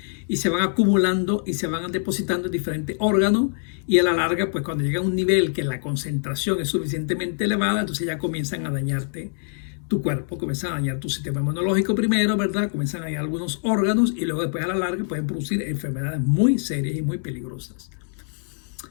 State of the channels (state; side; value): silent; right; digital silence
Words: y se van acumulando y se van depositando en diferentes órganos, y a la larga, pues cuando llega a un nivel que la concentración es suficientemente elevada, entonces ya comienzan a dañarte tu cuerpo, comienzan a dañar tu sistema inmunológico primero, ¿verdad? Comienzan a dañar algunos órganos y luego después a la larga pueden producir enfermedades muy serias y muy peligrosas.